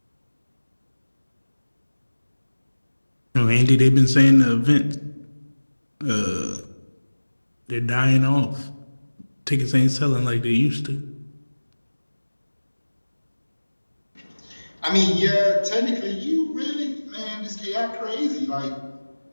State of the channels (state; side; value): inverted; both; correlation -1.00